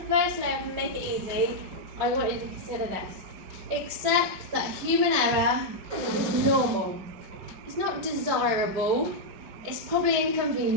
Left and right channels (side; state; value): left; late; 5.0 ms